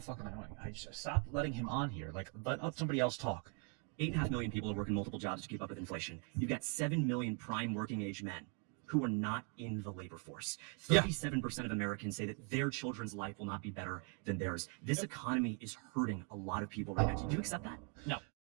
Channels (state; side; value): quieter; left; 38.4 dB